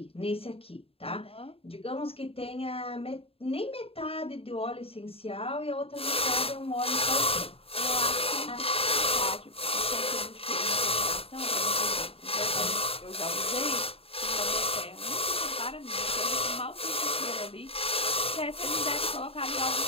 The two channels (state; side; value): late; right; 0.28 ms